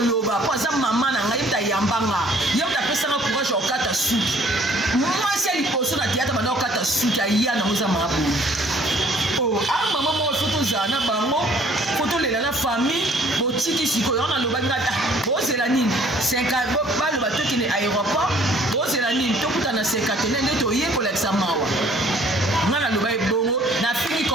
pour ça maman na ngai ta yambanga yota pesa na courage okata suki moi c'est liposo na théâtre bana okata suki ya na oza mabu oh a maman mo photo zana bango photo lela na famille botiki sikoyo na loba ngata bozela nini 50 balo batoki ne aéroport bozela nini tokuta na 50 nende to yekola examawa ngana loba ebongo na fini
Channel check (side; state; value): both; normal; correlation 0.57